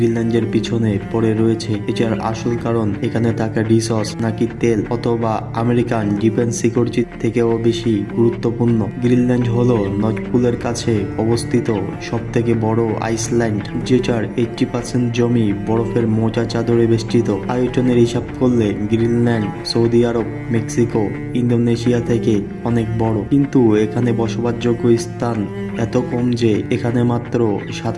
পিছনে পড়ে রয়েছে, এটার আসল কারণ এখানে থাকা রিসোর্স নাকি তেল, অথবা আমেরিকান ডিফেন্স সিকিউরিটি থেকেও বেশি গুরুত্বপূর্ণ। গ্রিনল্যান্ড হলো নর্থ পোলের কাছে অবস্থিত সব থেকে বড় আইসল্যান্ড, যেটার 80% জমি বরফের মোটা চাদরে বেষ্টিত। আয়তনের হিসাব করলে গ্রিনল্যান্ড সৌদি আরব, মেক্সিকো, ইন্দোনেশিয়া থেকে অনেক বড়, কিন্তু এখানে বসবাসযোগ্য স্থান এত কম যে এখানে মাত্র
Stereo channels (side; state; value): both; identical; correlation 1.00